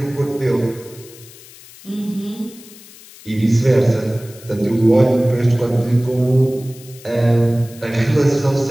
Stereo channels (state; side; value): noise; left; hiss, 21 dB below the sound